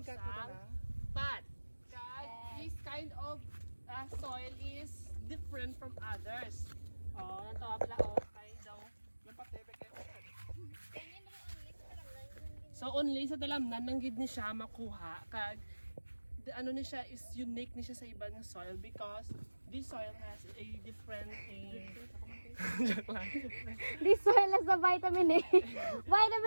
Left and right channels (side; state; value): both; inverted; correlation -1.00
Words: pat. Guys, this kind of soil is different from others. Oh, nantawa pala kay daw. So only sa dalamnan nang gid ni siya makuha kag ano ni siya is unique ni siya sa ibang soil because this soil has a different joke lang. This soil has the vitamin A,